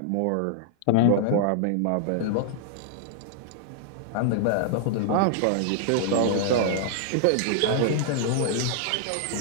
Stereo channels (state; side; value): different; both; correlation -0.01